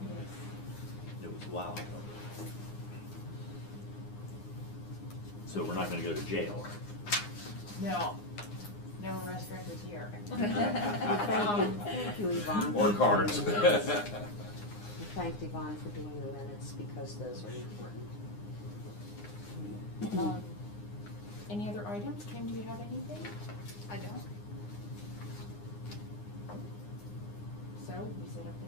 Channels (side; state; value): right; late; 9.7 ms